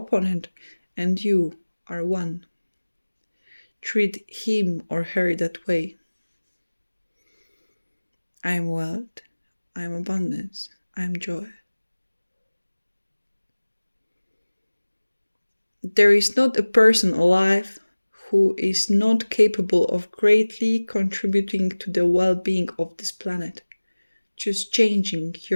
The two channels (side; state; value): both; inverted; correlation -1.00